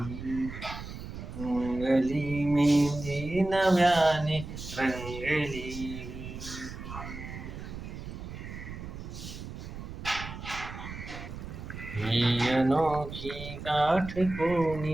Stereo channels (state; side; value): noise; right; rumble, 10 dB below the sound